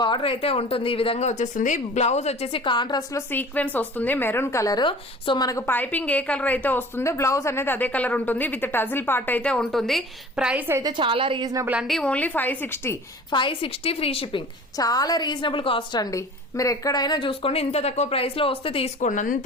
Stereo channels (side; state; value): both; normal; correlation 0.43